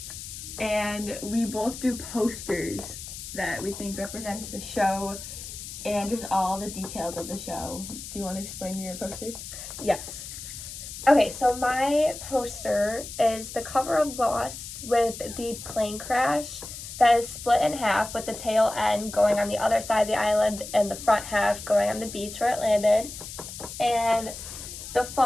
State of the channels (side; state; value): left; noise; hiss, 11 dB below the sound